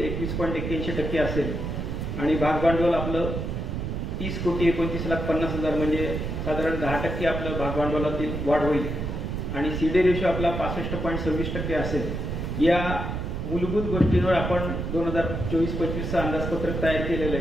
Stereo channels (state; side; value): noise; right; rumble, 3 dB below the sound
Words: 21.81% असेल आणि भागभांडवल आपलं 30,29,50,000 म्हणजे साधारण 10% आपलं भागभांडवलातील वाढ होईल आणि CD रेशो आपला 65.26% असेल. या मूलभूत गोष्टींवर आपण 2024-25 अंदाजपत्रक तयार केलेलं